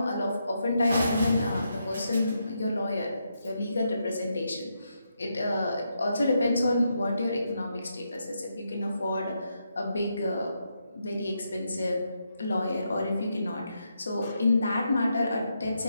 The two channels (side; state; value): both; inverted; correlation -0.82